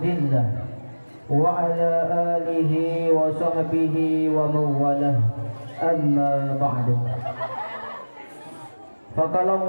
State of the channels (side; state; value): both; inverted; correlation -1.00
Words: wa ala alihi wa sahbihi wa mawalah. Amma ba'du. Faqala